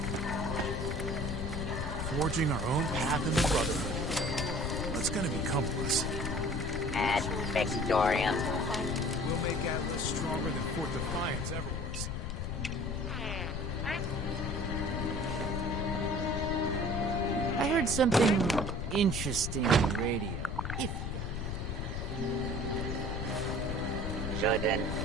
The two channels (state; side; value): noise; left; rumble, 3 dB below the sound